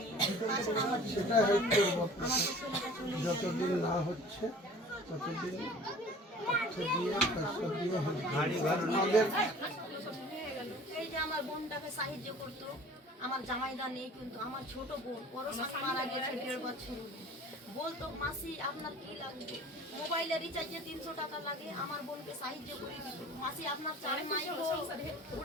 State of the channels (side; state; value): both; normal; correlation 0.46